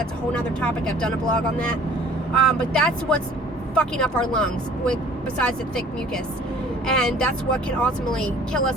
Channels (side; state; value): both; normal; correlation 0.52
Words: a whole nother topic. I've done a blog on that. But that's what's fucking up our lungs, besides the thick mucus. And that's what can ultimately kill